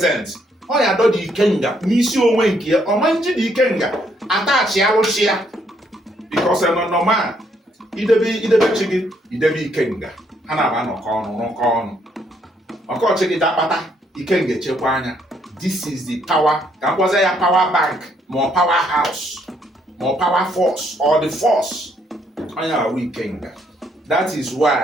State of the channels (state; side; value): normal; both; correlation 0.71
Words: Ọ ya adọ dị ikenga n'isi onwe nke ya. Ọ ma nji dị ikenga atachi alụchi ya because normal idebe chi gị idebe ikenga, ha na-aba nọkọ ọnụ ọkọchị gị dakpata ikenga echekwa anya. This is the power, ka mkpọza ya power bank ma power house ma power force or the force. Onye ahụ ikenga. That is